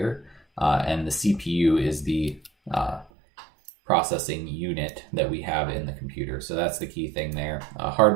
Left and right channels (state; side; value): drops out; left; at 3.1 s